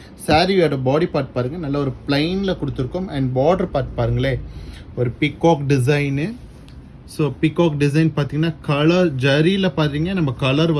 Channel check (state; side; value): identical; both; correlation 1.00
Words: சாரியோட பாடி பார்ட் பாருங்கள், நல்ல ஒரு பிளைனில் கொடுத்துருக்கோம். அண்ட் பார்டர் பார்ட் பாருங்களே, ஒரு peacock design. So peacock design பார்த்தீங்கன்னா கலர் ஜரியில் பார்த்தீங்கன்னா நம்ம கலர்